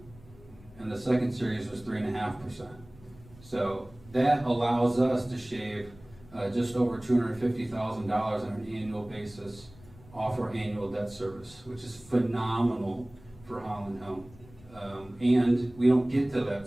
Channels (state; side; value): noise; left; rumble, 23 dB below the sound